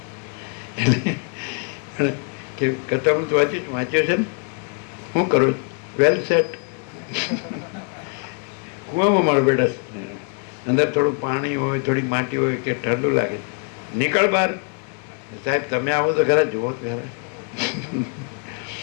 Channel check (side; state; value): right; quieter; 38.1 dB